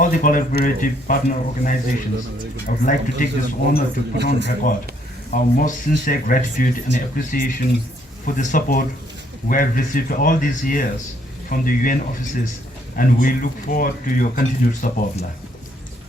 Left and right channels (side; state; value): both; normal; correlation 0.68